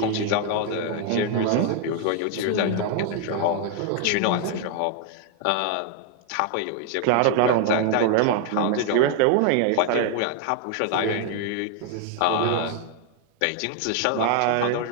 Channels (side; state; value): both; different; correlation 0.00